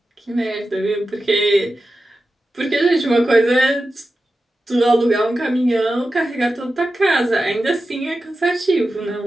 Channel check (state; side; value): normal; both; correlation 0.92